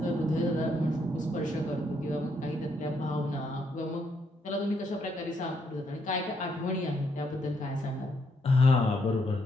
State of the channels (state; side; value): normal; both; correlation 0.75